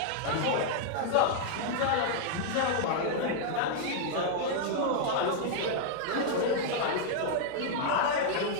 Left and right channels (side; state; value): both; different; correlation -0.01